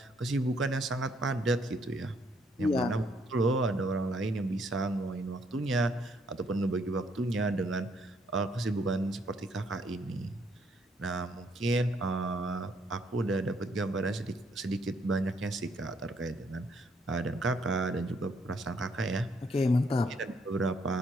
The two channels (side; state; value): both; normal; correlation 0.70